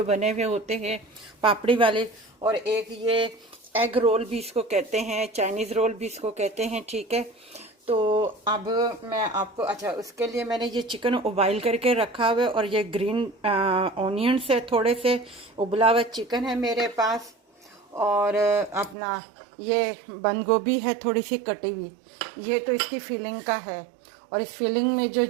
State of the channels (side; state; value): left; drops out; at 18.9 s